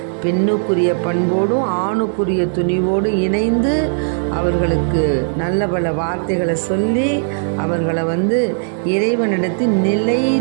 பெண்ணுக்குரிய பண்போடும் ஆணுக்குரிய துணிவோடு இணைந்து அவர்களுக்கு நல்ல பல வார்த்தைகளை சொல்லி அவர்களை இறைவனிடத்தில்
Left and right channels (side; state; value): left; silent; digital silence